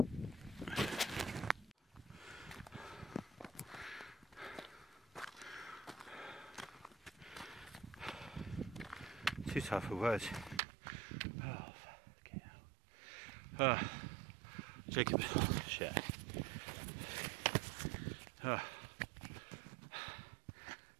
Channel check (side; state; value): left; drops out; at 10.6 s